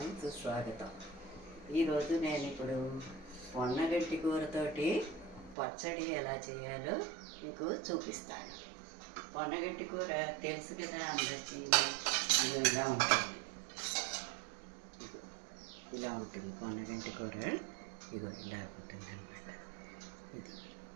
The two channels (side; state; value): left; drops out; at 5.6 s